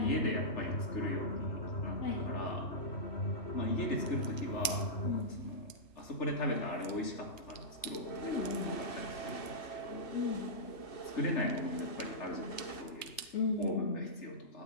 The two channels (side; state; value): right; late; 2.5 ms